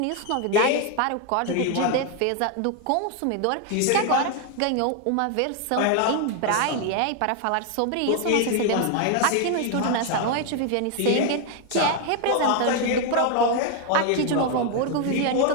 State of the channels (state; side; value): different; both; correlation 0.01